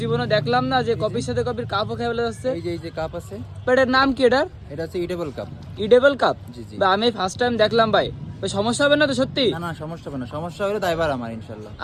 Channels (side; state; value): both; identical; correlation 1.00